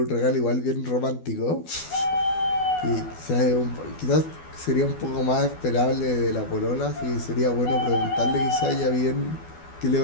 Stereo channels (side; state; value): right; late; 12 ms